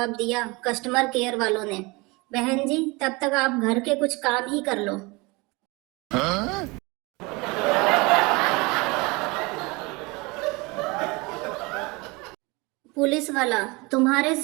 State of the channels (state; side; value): quieter; left; 25.7 dB